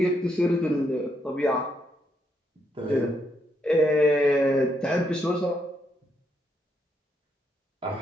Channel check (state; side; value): normal; both; correlation 0.77